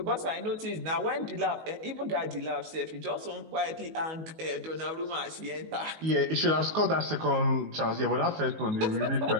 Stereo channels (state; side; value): late; left; 19 ms